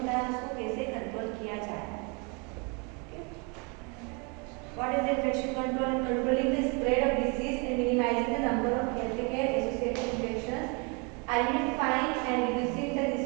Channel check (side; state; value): left; quieter; 32.4 dB